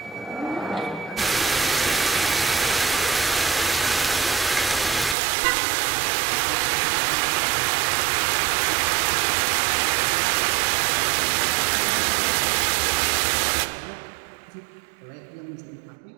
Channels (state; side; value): drops out; left; at 5.2 s